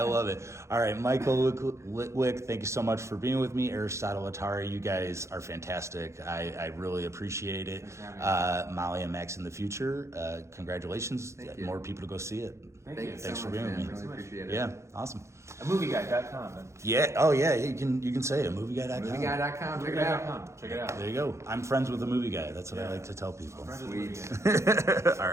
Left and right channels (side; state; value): left; late; 0.14 ms